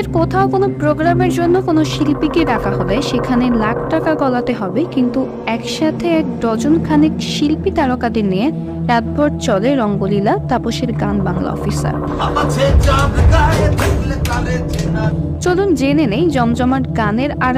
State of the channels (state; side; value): identical; both; correlation 1.00